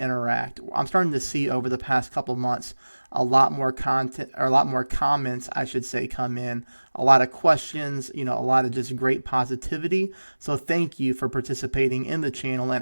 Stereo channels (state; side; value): inverted; both; correlation -1.00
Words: interact. I'm starting to see over the past couple months a lot more content, or a lot more comments, I should say, come in, a lot of questions, a lot of just great positivity. So thank you for participating in the channel